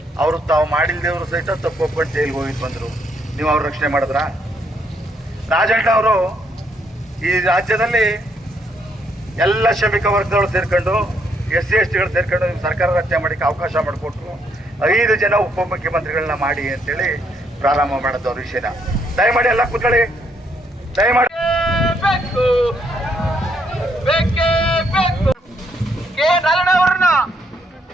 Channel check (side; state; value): both; normal; correlation 0.73